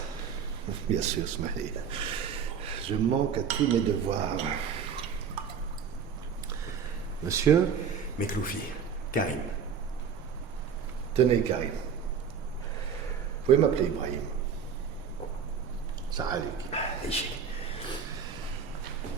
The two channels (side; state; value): left; quieter; 6.8 dB